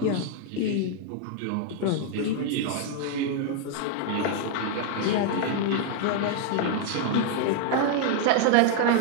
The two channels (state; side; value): different; both; correlation 0.00